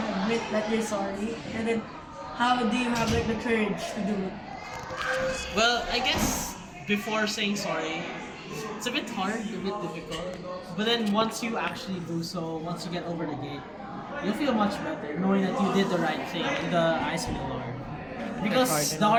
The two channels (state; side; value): identical; both; correlation 1.00